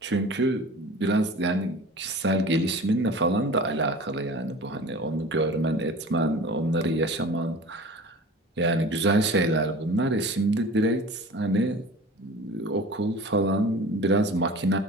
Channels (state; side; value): normal; both; correlation 0.39